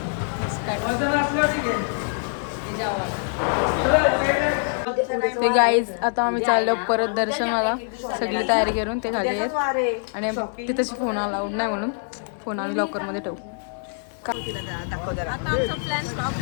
ते गाईज आता आम्ही चाललो परत दर्शनाला. सगळी तयारी करून ते खाली आहेत. आणि तिथंच फोन अलाउड नाही म्हणून फोन आम्ही लॉकरमध्ये ठेवू. आता आमचा प्लॅन स्टॉप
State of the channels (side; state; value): right; silent; 62 dB below the other